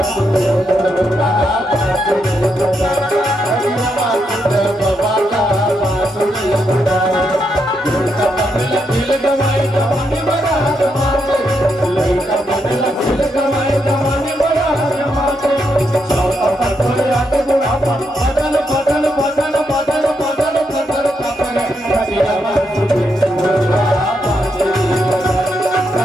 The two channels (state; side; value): normal; both; correlation 0.80